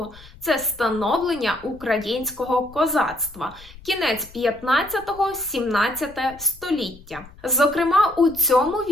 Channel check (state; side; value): noise; left; rumble, 21 dB below the sound